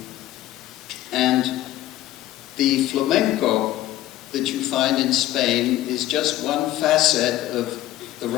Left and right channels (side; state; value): right; quieter; 14.4 dB